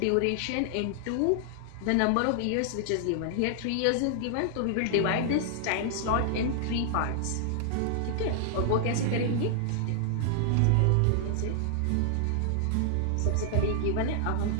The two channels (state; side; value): different; both; correlation -0.01